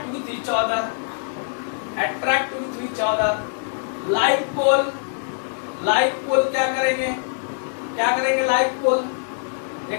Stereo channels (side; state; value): right; silent; digital silence